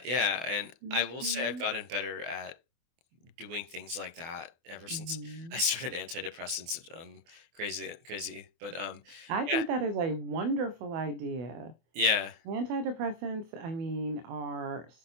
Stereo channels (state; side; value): late; left; 24 ms